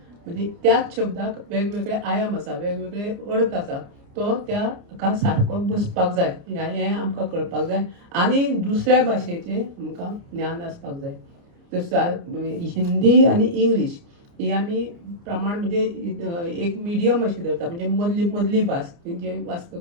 म्हणजे त्याच शब्दाक वेगवेगळे आयाम आसा, वेगवेगळे अर्थ आसा, तो त्या हाका सारको बसपाक जाय, हें आमकां कळपाक जाय. आनी दुसऱ्या भाशेचें आमकां ज्ञान आसपाक जाय. हिंदी आनी इंग्लीश ही आमी प्रमाण म्हणजे एक मिडियम अशी धरता, म्हणजे मदली भास जे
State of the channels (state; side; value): late; left; 29 ms